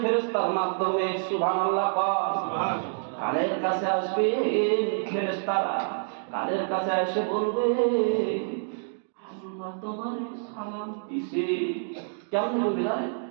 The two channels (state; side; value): silent; left; digital silence